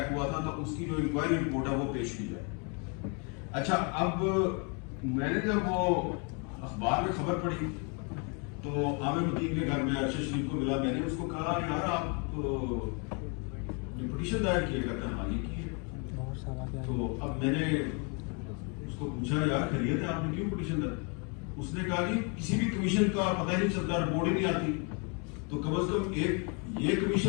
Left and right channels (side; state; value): right; quieter; 35.2 dB